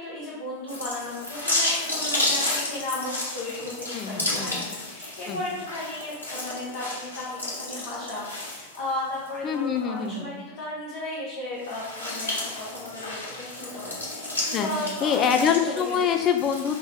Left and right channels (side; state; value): right; quieter; 3.7 dB